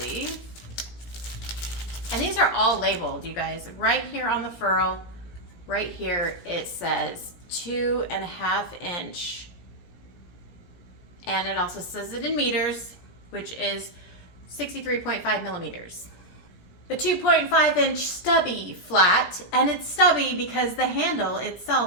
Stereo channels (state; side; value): late; right; 17 ms